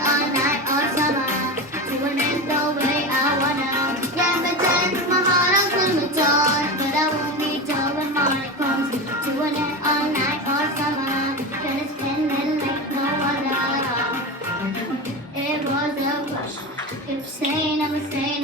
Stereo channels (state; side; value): normal; both; correlation 0.22